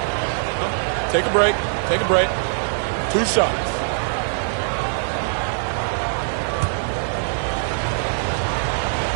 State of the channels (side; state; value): left; silent; 59 dB below the other